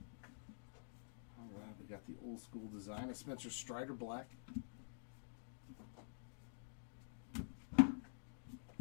All right, we got the old school design of Spencer Strider Black.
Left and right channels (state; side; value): silent; right; digital silence